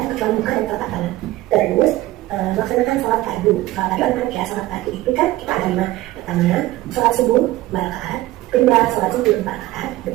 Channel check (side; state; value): left; quieter; 16.8 dB